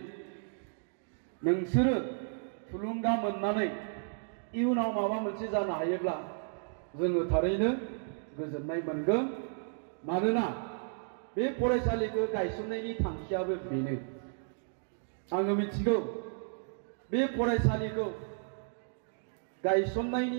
नोंसोरो थुलुंगा मोननानै इयुनाव माबा मोनसे जानो हायोब्ला जोङो थारैनो गोजोननाय मोनगोन। मानोना बे फरायसालिखौ गायसननायनि थांखियाबो बेनो। आङो मिथिगौ बे फरायसालिखौ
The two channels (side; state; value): left; silent; digital silence